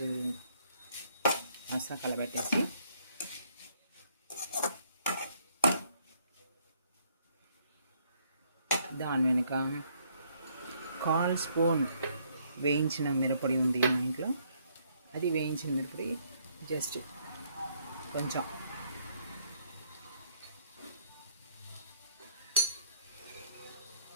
మసాలా కలబెట్టేసి దాని వెనుక 1/4 స్పూన్ వేయించిన మిరపొడి ఉంది మా ఇంట్లో. అది వేయించిన మిరపొడి జస్ట్ కొంచెం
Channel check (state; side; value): inverted; both; correlation -0.68